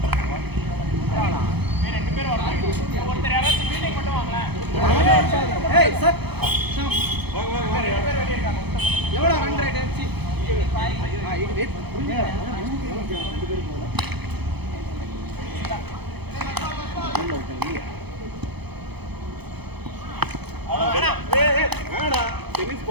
ரெண்டு பேர் வராங்க. ஒருத்தர் யாராவது ஃபீல்டிங் மட்டும் வாங்களேன். ஏய் சார் வாங்க எவ்வளவு ரன் ரேட் சி இது வெயிட் வேடா டென்னிஸ்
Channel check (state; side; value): late; left; 0.98 ms